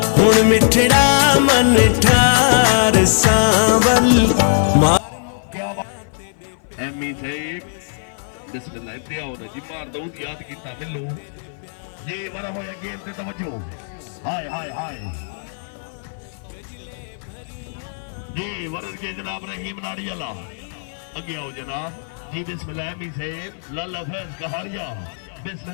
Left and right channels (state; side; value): silent; right; 58 dB below the other